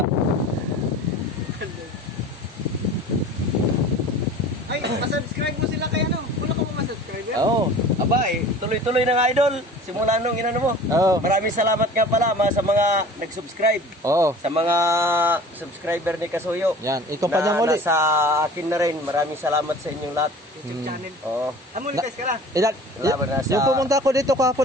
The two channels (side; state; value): both; normal; correlation 0.42